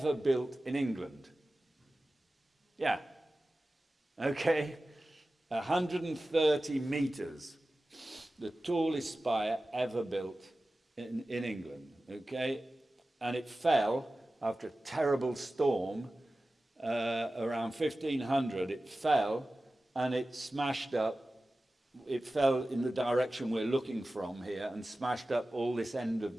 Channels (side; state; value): both; normal; correlation 0.96